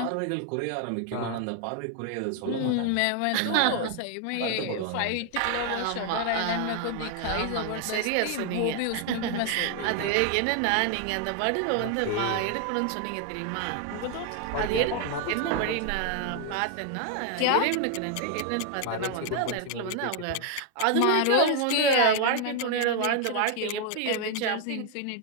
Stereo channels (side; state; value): both; different; correlation 0.00